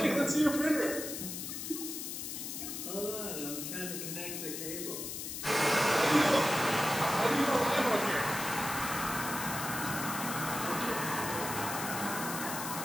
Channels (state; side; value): noise; left; hiss, 6 dB below the sound